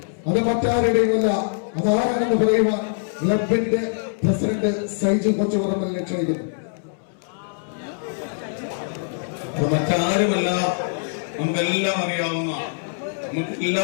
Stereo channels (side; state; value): right; silent; 63 dB below the other